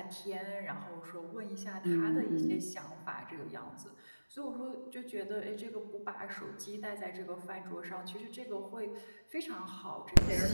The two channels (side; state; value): both; inverted; correlation -1.00